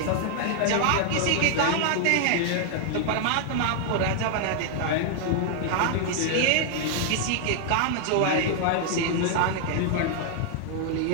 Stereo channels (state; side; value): different; both; correlation 0.00